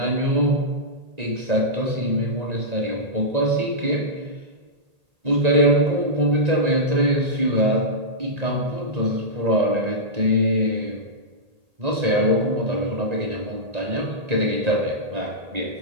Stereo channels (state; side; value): late; left; 1.9 ms